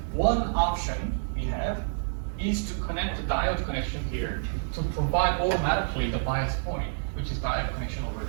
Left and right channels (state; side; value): silent; left; digital silence